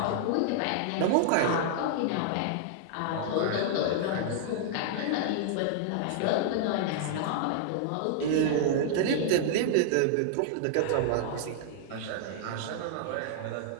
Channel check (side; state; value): both; different; correlation -0.01